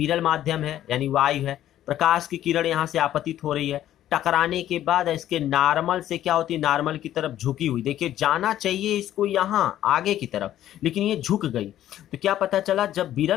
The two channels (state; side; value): quieter; right; 12.3 dB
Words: माध्यम है यानी वायु है, प्रकाश की किरण यहाँ से आपतित हो रही है, टकराने के बाद इसके नॉर्मल से क्या होती है, नॉर्मल की तरफ झुकी हुई। देखिए जाना चाहिए इसको यहाँ आगे की तरफ, लेकिन ये झुक गई। तो क्या पता चला, जब